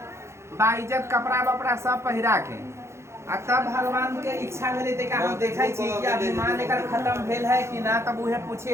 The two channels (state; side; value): late; left; 0.13 ms